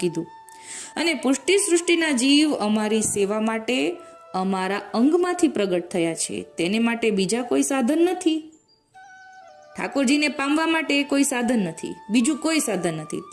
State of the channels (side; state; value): both; identical; correlation 1.00